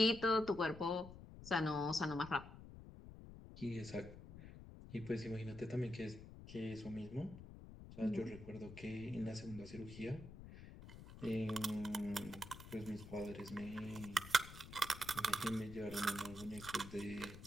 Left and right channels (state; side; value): noise; left; rumble, 14 dB below the sound